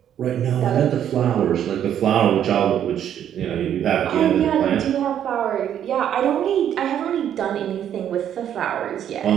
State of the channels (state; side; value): quieter; left; 9.9 dB